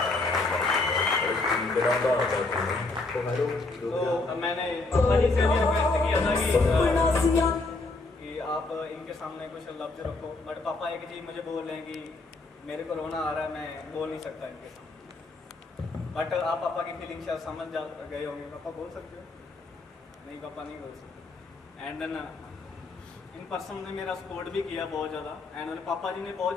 तो मैंने पापा जी से भी रिक्वेस्ट किया था कि आप इनके सामने कुछ लफ्ज रखो, बट पापा एक चीज़ मुझे बोल रहे हैं कि मेरे को रोना आ रहा है, मैं बोल नहीं सकता इनके सामने। बट आप पापा की फीलिंग शायद समझ जा गए होंगे। पापा बोल सकते हो? नहीं, पापा नहीं बोल सकते। एंड देन इन पर्सन ने मेरा सपोर्ट भी किया बहुत ज़्यादा। एंड पापा जी ने बहुत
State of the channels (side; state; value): right; quieter; 3.3 dB